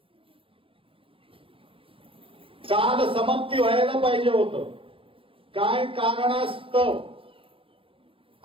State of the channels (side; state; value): left; late; 0.26 ms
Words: काल समाप्ती व्हायला पाहिजे होतं, काय कारणास्तव